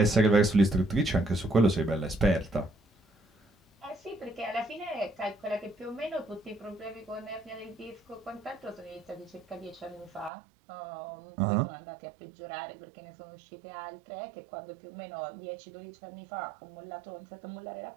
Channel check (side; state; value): left; drops out; at 10.3 s